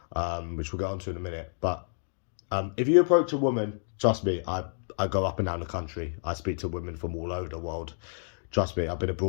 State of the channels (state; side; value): silent; right; digital silence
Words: which we'll get onto in a minute. But if you approach a woman, trust me, I go up and down the country. I speak to women from all over the world. Trust me, I've been